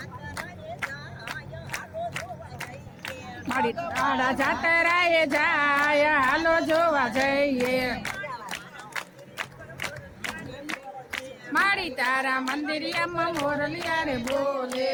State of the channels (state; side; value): identical; both; correlation 1.00